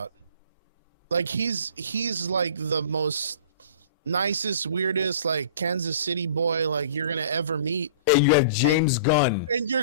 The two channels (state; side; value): inverted; both; correlation -0.44